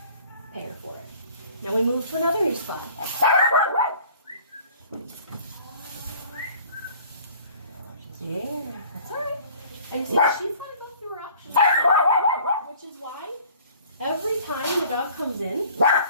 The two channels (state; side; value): inverted; both; correlation -0.50